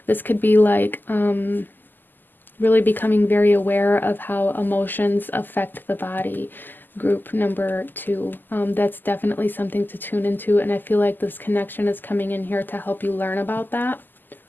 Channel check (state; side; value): late; right; 0.089 ms